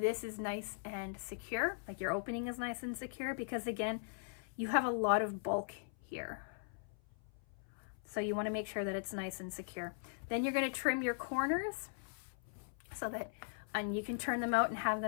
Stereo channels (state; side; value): silent; right; 51 dB below the other